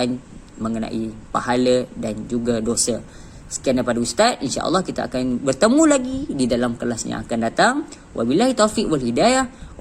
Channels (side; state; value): both; identical; correlation 1.00